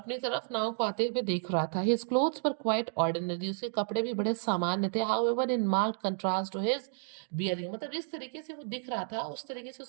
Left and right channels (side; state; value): left; silent; digital silence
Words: तरफ नाव को आते हुए देख रहा था। His clothes were quite ordinary, उसके कपड़े भी बड़े सामान्य थे। However in marked contrast to his bearing, मतलब जिस तरीके से वो दिख रहा था उस तरीके से